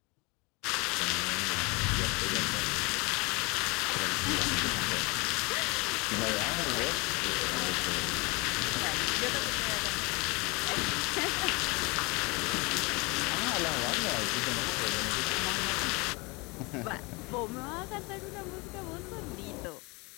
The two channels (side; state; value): right; quieter; 27.0 dB